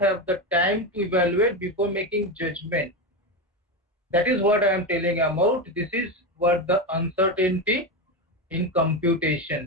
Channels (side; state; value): both; normal; correlation 0.16